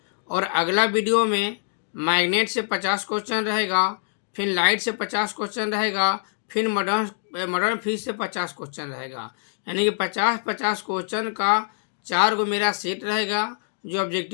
और अगला वीडियो में मैग्नेट से 50 क्वेश्चन रहेगा, फिर लाइट से 50 क्वेश्चन रहेगा, फिर मॉडर्न फिजिक्स से 50 क्वेश्चन रहेगा। यानी कि 50-50 क्वेश्चन का 4 गो मेरा सेट रहेगा जो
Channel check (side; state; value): right; silent; 62 dB below the other